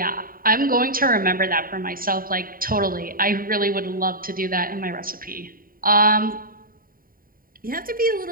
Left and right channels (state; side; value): late; left; 0.41 ms